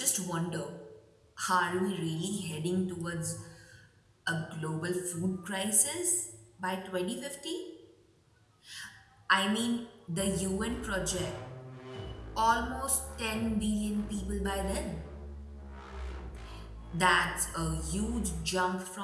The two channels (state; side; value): identical; both; correlation 1.00